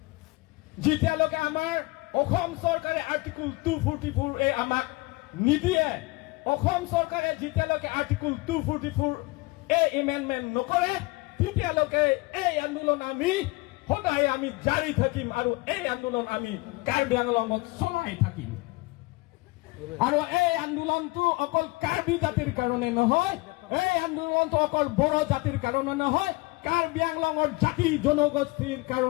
যেতিয়ালৈকে আমাৰ অসম চৰকাৰে আৰ্টিকল 244A আমাক নিদিয়ে, অসম চৰকাৰে যেতিয়ালৈকে আৰ্টিকল 244A এমেণ্ডমেণ্ট নকৰে তেতিয়ালৈকে এই আন্দোলন আমি সদায় আমি জাৰি থাকিম আৰু এই আন্দোলন আমি কাৰ্বি আংলঙত চলাই থাকিম। আৰু এই আন্দোলনটো অকল কাৰ্বি জাতিৰ কাৰণে নহয়, এই আন্দোলনটো অকল বড়ো জাতিৰ কাৰণে নহয়, কাৰ্বি আংলঙৰ জাতি জনগোষ্ঠীৰ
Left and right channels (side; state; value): right; quieter; 23.7 dB